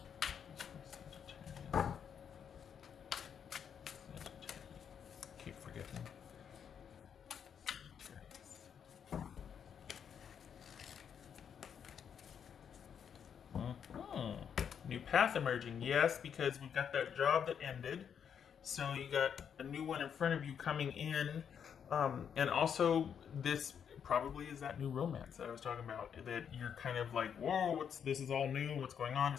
Sagittarius. Keep forgetting. Sagittarius. New path emerging. Yes, because we've got that job that ended. So you got a new one in front of you coming in. And also this probably is that new romance that I was talking about, that you're kind of like, whoa, this is all new, what's going on?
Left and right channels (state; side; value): quieter; right; 7.8 dB